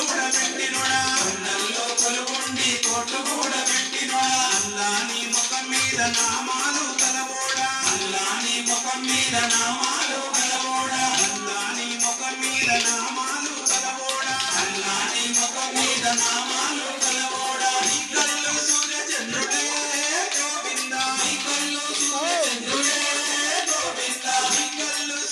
పెట్టినోడా కొండల్లో కొలుగుండి తోట్లు కూడా పెట్టినోడా అల్లాని ముఖం మీద నామాలు కలవోడా అల్లాని ముఖం మీద నామాలు కలవోడా అల్లాని ముఖం మీద నామాలు కలవోడా అల్లాని ముఖం మీద నామాలు కలవోడా నీ కళ్ళు సూర్య చంద్రుడే గోవిందా నీ కళ్ళు సూర్య చంద్రుడే గోవిందా నీ కళ్ళు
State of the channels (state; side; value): identical; both; correlation 1.00